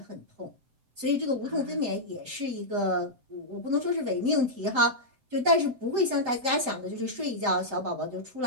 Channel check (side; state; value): left; late; 7.8 ms